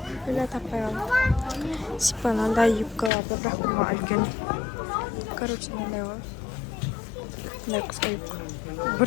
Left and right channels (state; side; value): drops out; right; at 3.1 s